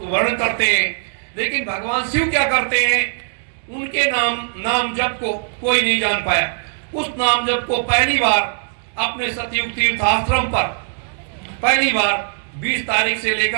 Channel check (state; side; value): silent; left; digital silence